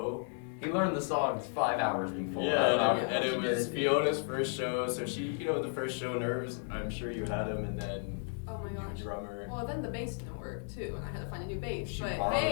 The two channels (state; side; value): silent; right; 55 dB below the other